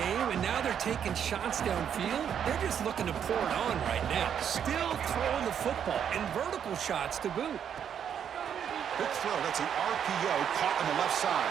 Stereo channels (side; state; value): left; quieter; 8.5 dB